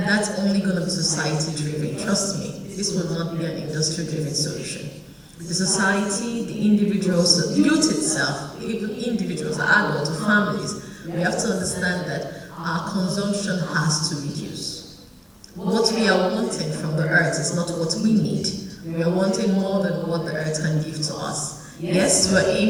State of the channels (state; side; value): identical; both; correlation 1.00